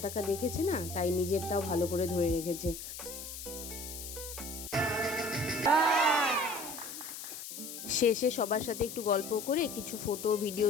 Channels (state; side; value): noise; left; hiss, 9 dB below the sound